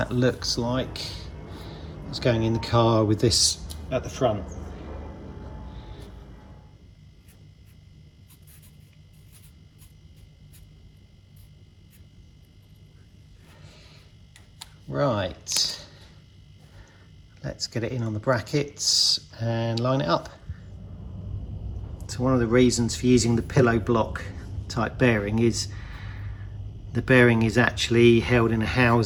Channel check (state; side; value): identical; both; correlation 1.00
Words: looks like it's going in the car with this at the front. Right, let's get it in on the brackets and line it up. So one of the reasons for using the pillow block type bearing is the bearing is actually held in a